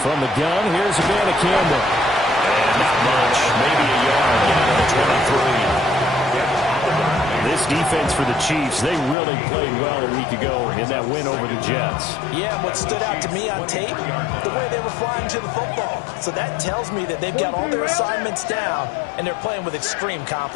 from the gun, here's a Banacanda. And not much, maybe a yard down to the 23. This defense for the Chiefs, they really played well a week ago in that win over the Jets. Yeah, what stood out to me on tape, the way they were flying to the football. So that tells me that they've got all their assignments down, and they're playing with extreme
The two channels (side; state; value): right; drops out; at 9.2 s